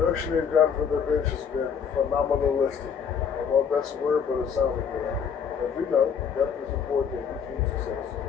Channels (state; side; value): quieter; right; 7.0 dB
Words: they've gotten for their bench has been phenomenalistic. I don't know if that's a word, but it sounds like it. As we know, depth is important in any team success.